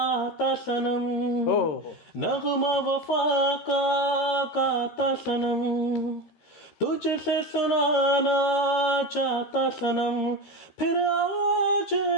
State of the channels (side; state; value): right; late; 13 ms